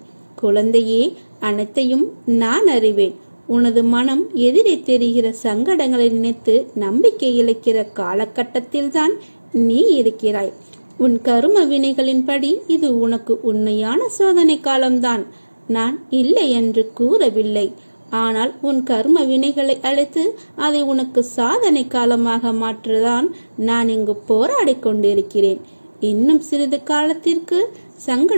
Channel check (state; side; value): inverted; both; correlation -1.00